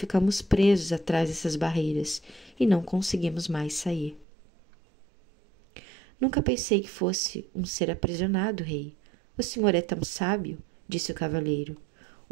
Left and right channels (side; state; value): left; drops out; at 4.2 s